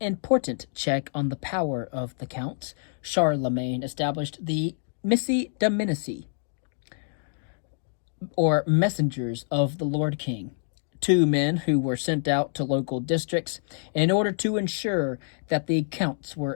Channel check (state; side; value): silent; right; digital silence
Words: check on the power of the counts, Charlemagne established the Missi Dominici, or messengers of the Lord King, 2 men who were sent out to local districts in order to ensure that the counts